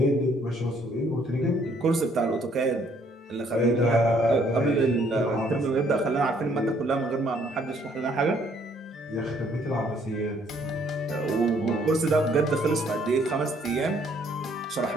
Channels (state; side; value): normal; both; correlation 0.65